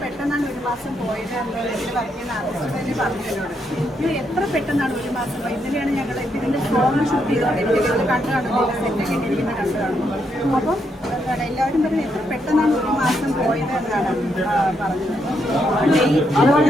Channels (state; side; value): normal; both; correlation 0.78